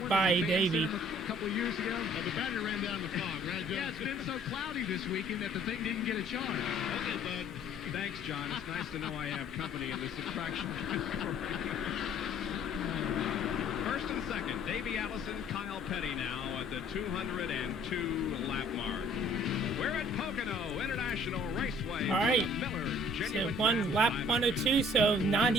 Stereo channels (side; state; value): both; normal; correlation 0.55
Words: by Davey. A couple of years ago. The battery ran down the fog, right, John? Yeah, it's been so cloudy this weekend that the thing didn't get a charge. Okay, bud. Thanks, John. It's nice to know I have company in this attraction. First and second, Davey Allison, Kyle Petty now at the 202 lap mark. We're at Pocono International Raceway. All right. Miller, So genuine one lap 102, so